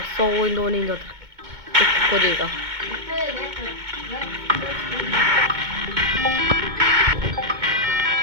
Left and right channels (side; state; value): left; late; 2.2 ms